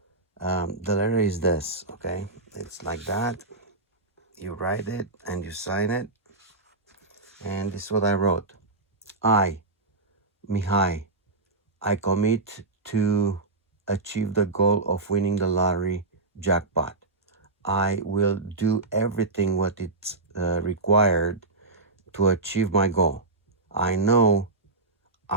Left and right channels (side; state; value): left; quieter; 3.3 dB